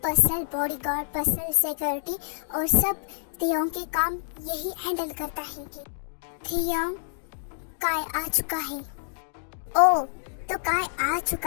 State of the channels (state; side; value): silent; right; digital silence